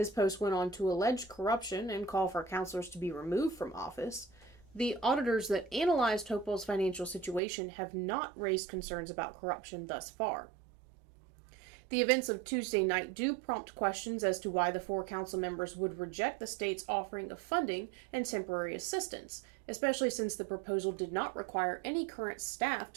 post went on to allege corruption and call for councilors to be removed from office. The auditors that analyzed Hopewell's financial situation have not raised concerns about corruption thus far. The events of Tuesday night do prompt questions as to why the 4 council members would reject the state's offering of funding and temporary assistance, especially since the proposal did not require any current staff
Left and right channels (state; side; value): drops out; left; at 7.4 s